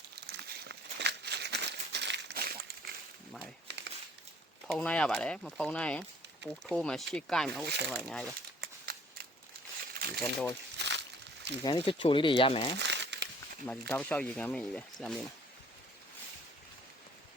မိုင်းဖုံးနိုင်ရပါတယ်မဖုံးနိုင်ရင်ပူထိုးမှရှေ့ကိုက်မှဟုတ်တယ်ပါအများကြီးပါဒီကန်တော့ဒီကန်လေးချိုလေးတွေရမယ်မဒီတောက်လျှောက်ရေကန်မင်းကြီးပဲစမ်းမင်း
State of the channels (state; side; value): normal; both; correlation 0.55